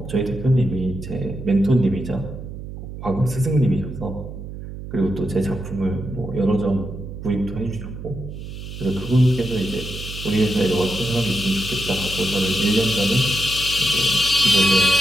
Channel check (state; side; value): noise; right; hum, 10 dB below the sound